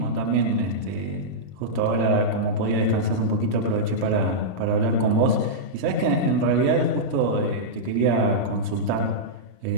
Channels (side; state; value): left; late; 38 ms